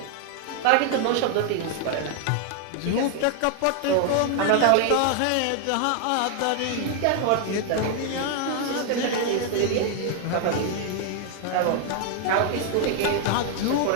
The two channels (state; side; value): different; both; correlation 0.00